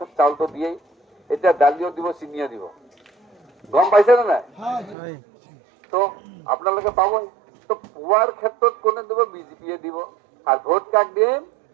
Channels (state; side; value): drops out; left; at 5.0 s